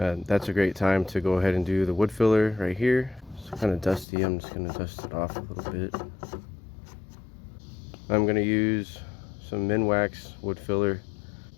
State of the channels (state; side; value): drops out; right; at 4.0 s